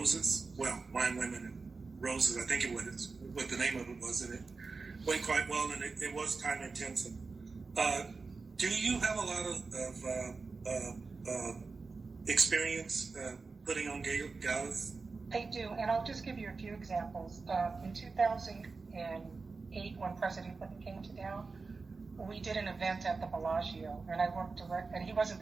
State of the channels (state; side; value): quieter; left; 4.2 dB